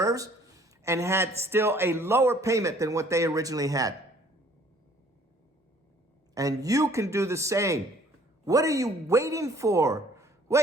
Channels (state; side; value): normal; both; correlation 0.57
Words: and had still a lower payment than what they originally had. And you can do the same. What are you waiting for?